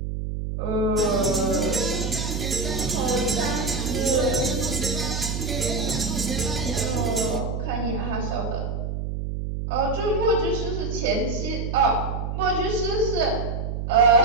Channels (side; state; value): right; noise; hum, 3 dB below the sound